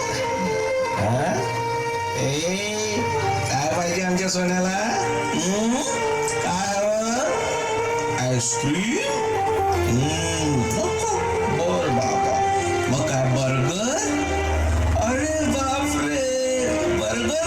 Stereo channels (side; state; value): both; identical; correlation 1.00